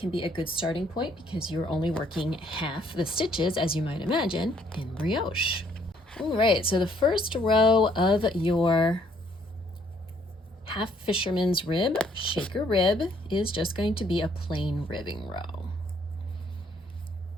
be a good starting point because you're only working half the stitches, as you might imagine, in brioche. All right, so the first row of your half fisherman's rib, shaker rib, is just going to be a plain ribbing row.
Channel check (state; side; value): normal; both; correlation 0.66